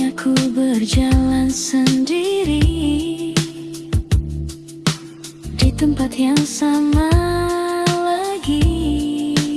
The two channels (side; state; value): both; identical; correlation 1.00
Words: aku berjalan sendiri di tempat yang sama lagi,